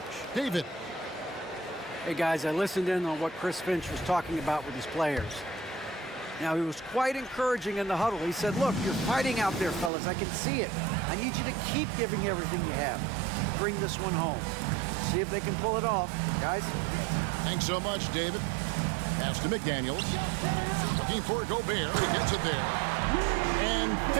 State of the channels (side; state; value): left; drops out; at 9.9 s